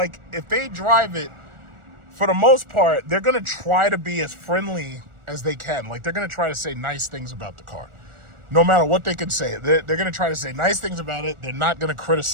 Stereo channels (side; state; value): left; late; 1.4 ms